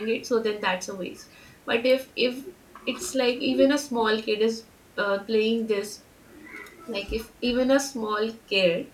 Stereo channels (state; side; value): identical; both; correlation 1.00